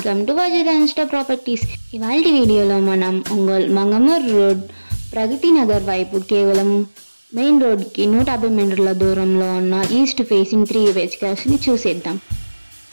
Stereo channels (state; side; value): inverted; both; correlation -1.00